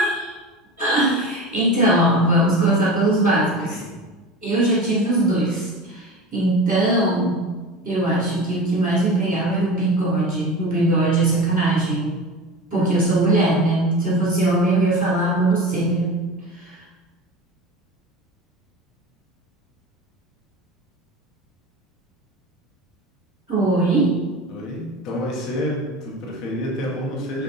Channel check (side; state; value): both; normal; correlation 0.31